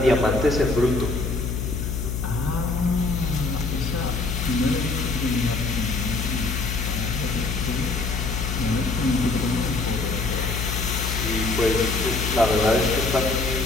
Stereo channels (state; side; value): noise; left; hum, 2 dB below the sound